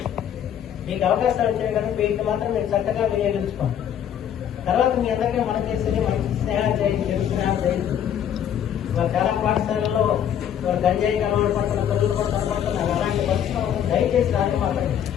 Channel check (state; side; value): quieter; right; 9.6 dB